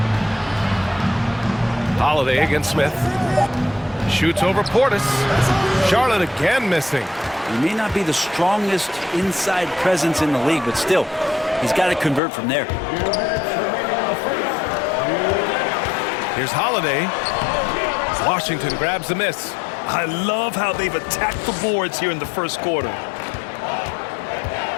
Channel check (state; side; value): drops out; right; at 12.2 s